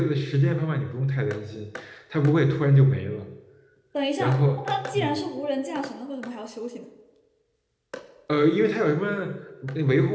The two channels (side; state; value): both; identical; correlation 1.00